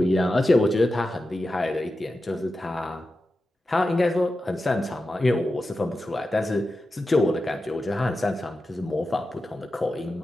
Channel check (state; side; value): normal; both; correlation 0.91